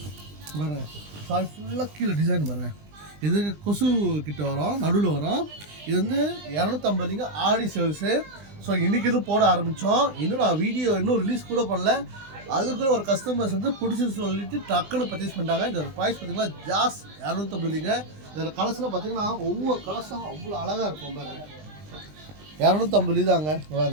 பாருங்கள் சாரி ஃபுல்லாக கீழே டிசைன் பாருங்கள். இது கொசு கிட்ட வரும், நடுவில் வரும். இது வந்து 250லிங்க ஆடி சேல்ஸு. ஸோ இன்றைக்கி இது போட ஆரம்பித்தோம். இன்னும் நான் வீடியோ இன்னும் ரிலீஸ் கூட பண்ணல. அதுக்குள்ள ஒரு கஸ்டமர்ஸ் வந்து பிடிச்சின்னு சொல்லிட்டு டக்குன்னு பர்ச்சேஸ் பண்ணிட்டாங்க. இந்த ப்ரைஸ் பார்த்தீங்கன்னா ஜாஸ் 250லிங்க. இதில் கலர்ஸ்லாம் பார்த்தீங்கன்னா ஒவ்வொரு கலர்ஸும் அவ்வளோ அழகாக இருக்கும் பாருங்க. 250 தாங்க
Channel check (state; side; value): late; left; 20 ms